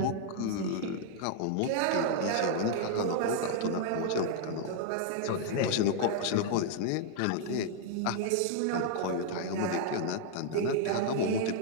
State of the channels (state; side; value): different; both; correlation 0.00